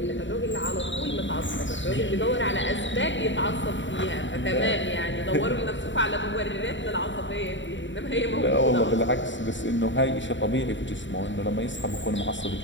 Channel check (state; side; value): late; right; 0.54 ms